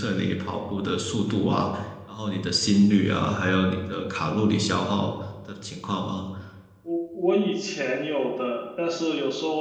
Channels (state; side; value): identical; both; correlation 1.00